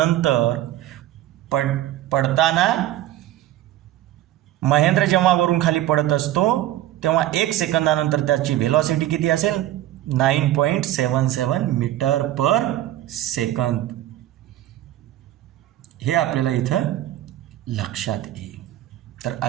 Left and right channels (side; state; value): left; quieter; 13.8 dB